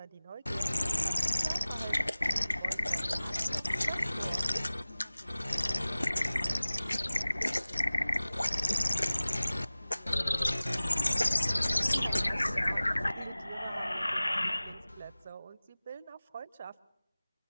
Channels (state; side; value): inverted; both; correlation -0.99